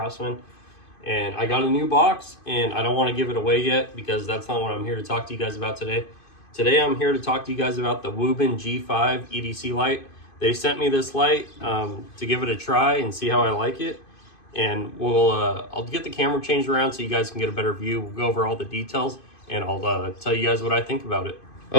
and I got a new box, and I don't want to give it away yet because that's not what I'm here to talk to you guys about today. Today I'm here to talk to you guys about the WUBEN G5 EDC light. They sent me this light to give it a try and see how I like it. And I'll get the camera changed around so you guys can get a better view. We'll go over all the details and I'll tell you guys what I think about it.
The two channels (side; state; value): right; late; 2.5 ms